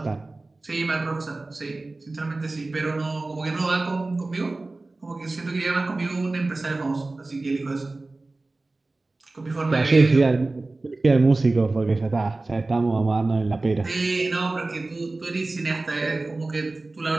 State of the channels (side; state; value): left; quieter; 3.2 dB